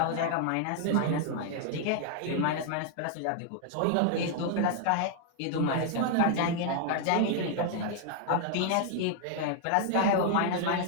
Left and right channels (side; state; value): both; different; correlation 0.00